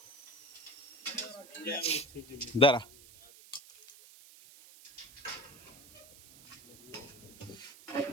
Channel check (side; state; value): right; noise; hiss, 21 dB below the sound